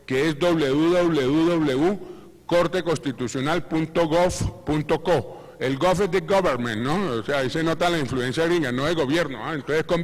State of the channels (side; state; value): both; identical; correlation 1.00